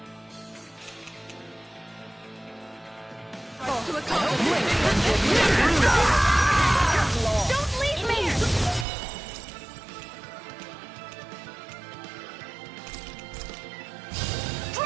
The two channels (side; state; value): left; drops out; at 8.8 s